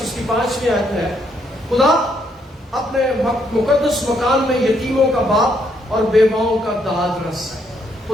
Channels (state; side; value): normal; both; correlation 0.73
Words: اس کی 5ویں آیت میں ہے، خدا اپنے مقدس مکان میں یتیموں کا باپ اور بیواؤں کا داد رس ہے۔